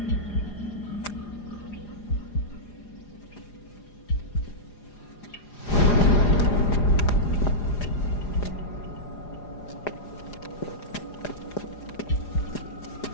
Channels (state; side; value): late; right; 4.9 ms